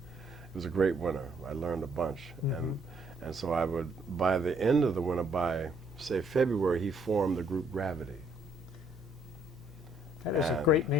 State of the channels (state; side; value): normal; both; correlation 0.67